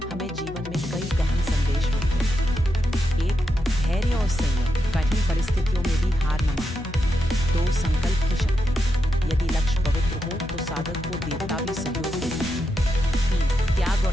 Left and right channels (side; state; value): left; noise; hum, 11 dB below the sound